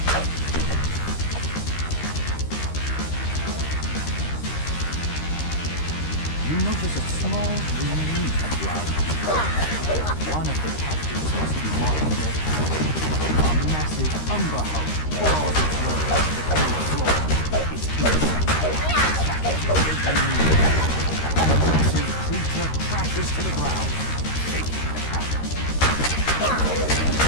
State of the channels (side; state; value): right; late; 13 ms